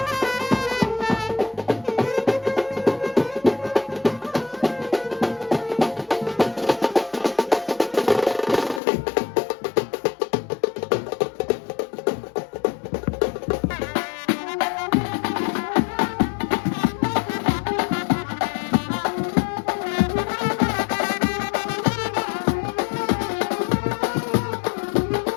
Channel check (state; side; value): drops out; right; at 8.8 s